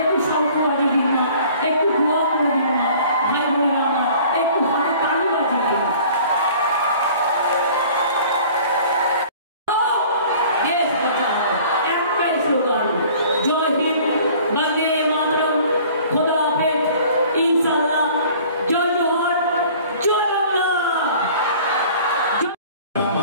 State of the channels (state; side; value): inverted; both; correlation -0.49